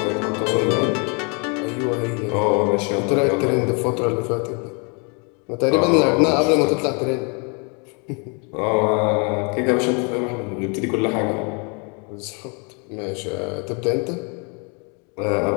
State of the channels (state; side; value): quieter; right; 34.8 dB